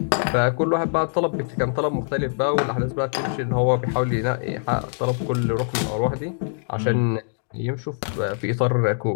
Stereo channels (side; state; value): right; silent; digital silence